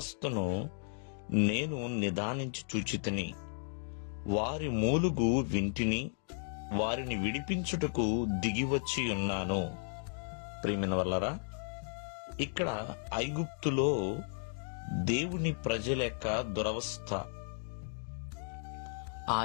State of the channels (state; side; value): silent; right; digital silence